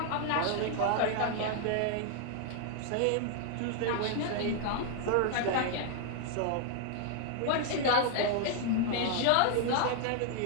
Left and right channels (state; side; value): different; both; correlation 0.00